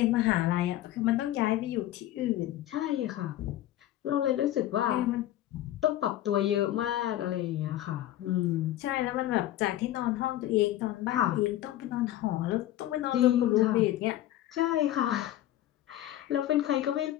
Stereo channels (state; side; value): quieter; right; 13.7 dB